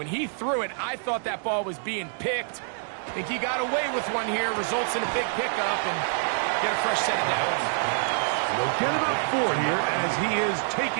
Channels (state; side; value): silent; left; digital silence